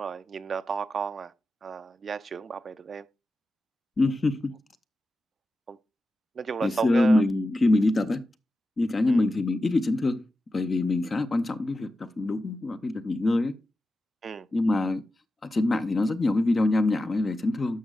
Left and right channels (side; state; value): both; normal; correlation 0.92